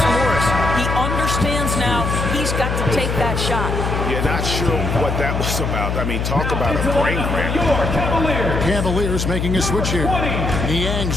Morris. He understands now he's got to take that shot. Yeah, not sure what that was about. I mean, talk about a brain cramp. Cavaliers making a switch here.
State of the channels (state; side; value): noise; left; hum, 1 dB below the sound